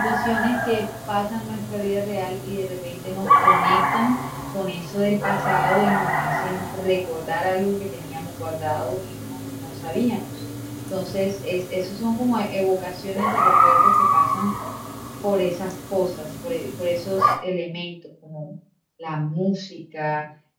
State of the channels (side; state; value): both; identical; correlation 1.00